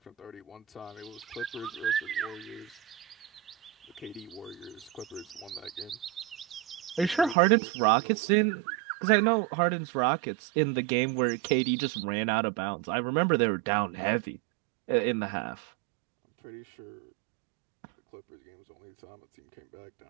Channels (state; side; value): drops out; left; at 7.4 s